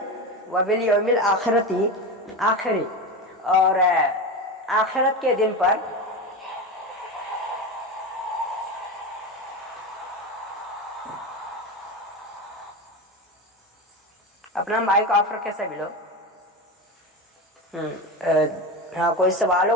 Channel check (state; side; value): normal; both; correlation 0.21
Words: وَبِالْيَوْمِ الْآخِرَةِ، آخری اور آخرت کے دن پر. اپنا مائک آف رکھے سبھی لوگ. ہاں کوئی سوال